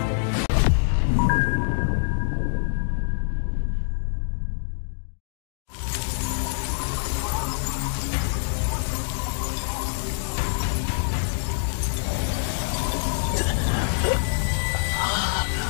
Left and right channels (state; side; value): silent; right; digital silence